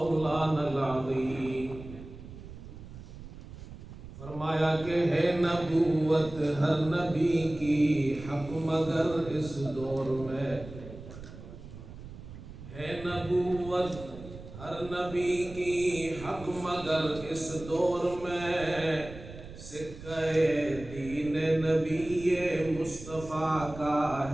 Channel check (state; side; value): noise; right; rumble, 14 dB below the sound